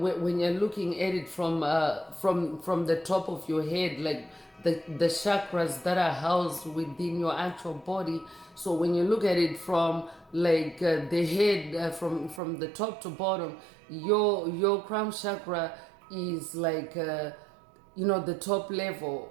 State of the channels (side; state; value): left; drops out; at 12.4 s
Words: you're looking at it from the top of your head, like the chakras that are housed within your actual body. So when you look at it from like the head, from the top to bottom, your crown chakra is like the top level,